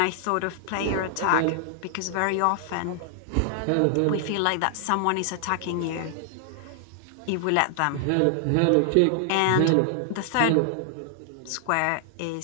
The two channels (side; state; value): both; different; correlation 0.00